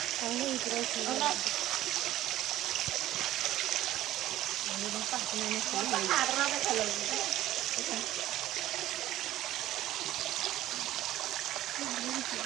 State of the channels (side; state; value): left; quieter; 14.4 dB